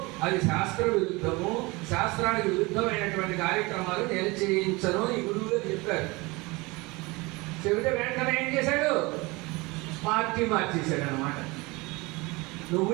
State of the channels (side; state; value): left; quieter; 24.2 dB